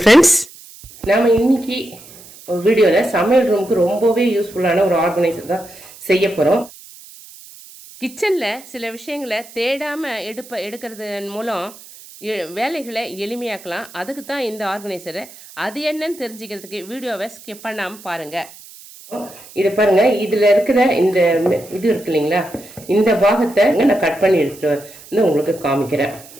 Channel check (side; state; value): right; noise; hiss, 20 dB below the sound